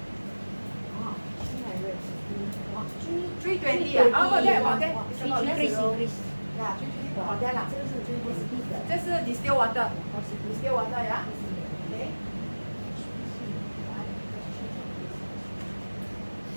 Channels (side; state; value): both; inverted; correlation -1.00